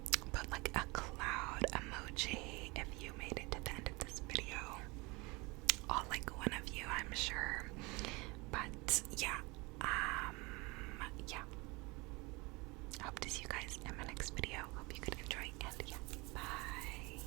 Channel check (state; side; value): quieter; left; 25.7 dB